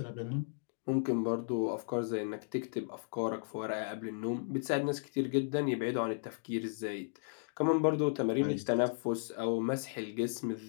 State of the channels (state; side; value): silent; right; digital silence